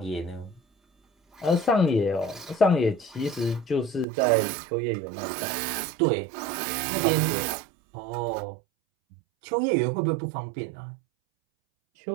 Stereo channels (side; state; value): left; drops out; at 4.0 s